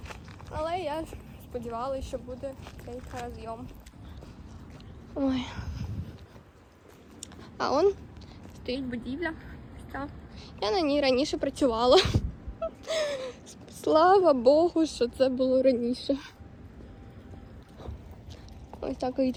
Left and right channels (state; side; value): identical; both; correlation 1.00